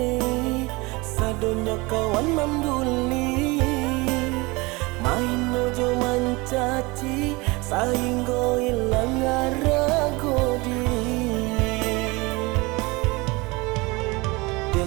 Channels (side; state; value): left; quieter; 24.5 dB